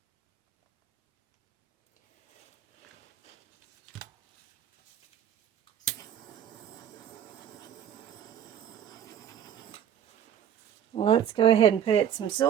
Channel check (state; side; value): quieter; left; 9.6 dB